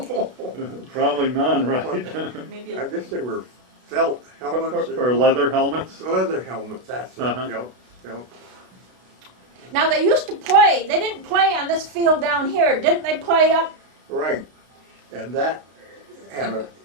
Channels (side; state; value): left; late; 32 ms